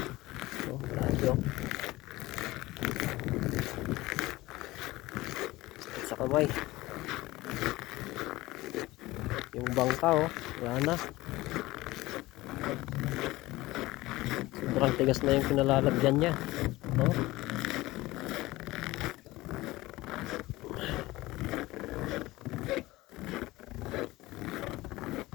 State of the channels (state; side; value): quieter; right; 19.0 dB